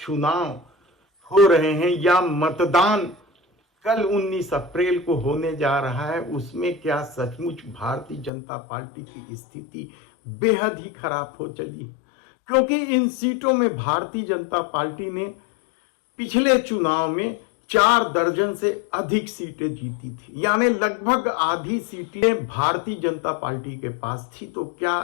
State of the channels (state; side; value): drops out; right; at 8.3 s